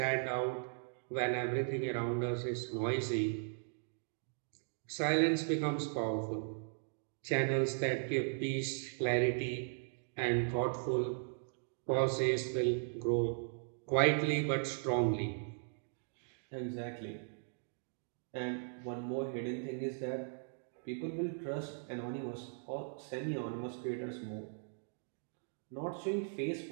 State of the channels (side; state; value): left; silent; digital silence